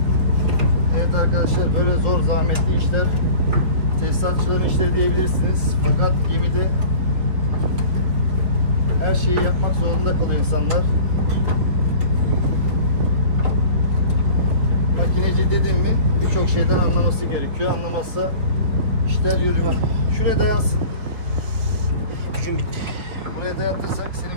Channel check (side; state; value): left; late; 4.5 ms